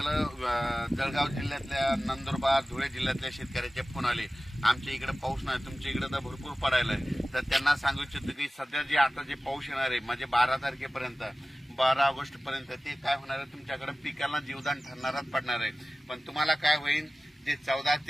जळगाव जिल्ह्यातल्या, नंदुरबार, धुळे जिल्ह्यातल्या शेतकऱ्याचे फोन आले, आमच्या इकडे पाऊस नाही, तुमच्या इकडे तर भरपूर पडायलाय. तर त्यांना सांगू इच्छितो की सध्या जे आता जे पाऊस येणार आहे, म्हणजे 12 तारखेपर्यंत, 12 ऑगस्ट पर्यंत, ते काय होणार आहे, तुमच्याकडे पिकाला जीवदान ठरणारच पडणार आहे. पण तुम्हाला काय होईल, जे 14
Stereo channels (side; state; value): both; normal; correlation 0.96